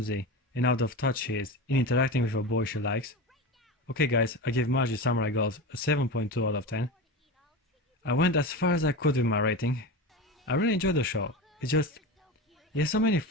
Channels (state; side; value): normal; both; correlation 0.24